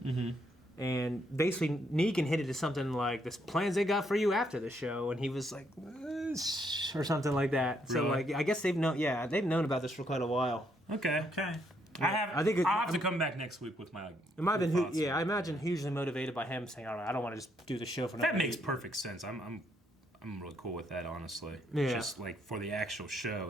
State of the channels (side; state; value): both; normal; correlation 0.73